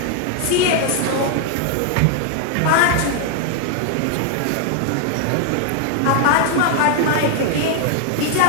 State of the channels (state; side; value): different; both; correlation 0.00